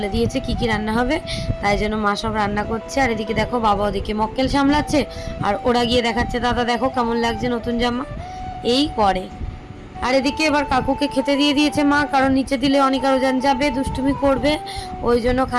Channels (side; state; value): both; identical; correlation 1.00